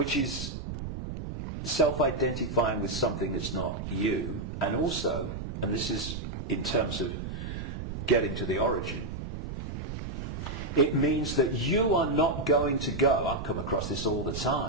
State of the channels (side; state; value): right; noise; rumble, 6 dB below the sound